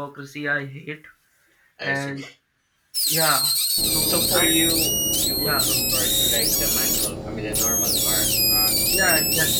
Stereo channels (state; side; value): identical; both; correlation 1.00